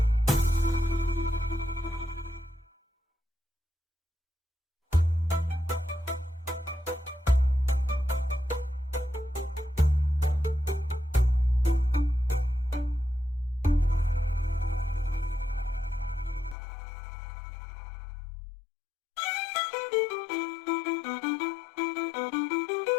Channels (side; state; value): right; drops out; at 16.6 s